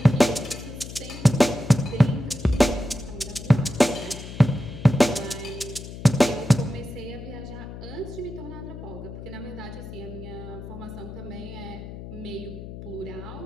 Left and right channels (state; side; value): noise; left; hum, 11 dB below the sound